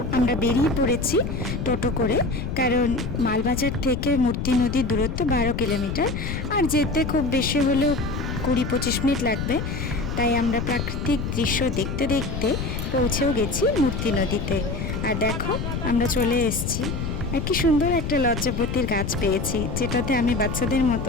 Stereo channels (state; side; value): noise; left; rumble, 4 dB below the sound